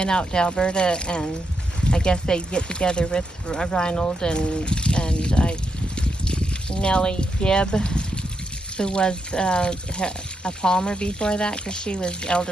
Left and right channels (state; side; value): normal; both; correlation 0.82